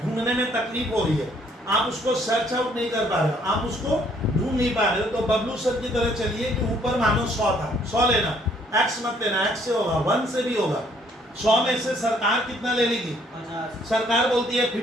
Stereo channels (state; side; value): normal; both; correlation 0.64